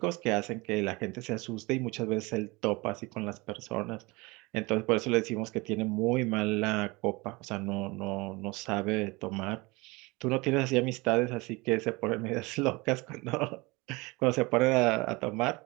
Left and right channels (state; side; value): quieter; left; 24.3 dB